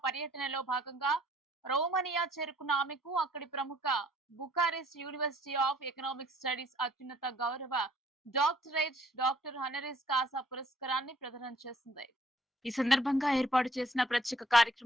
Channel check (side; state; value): both; normal; correlation 0.61